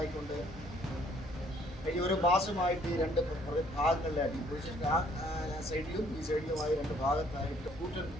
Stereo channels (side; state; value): both; normal; correlation 0.63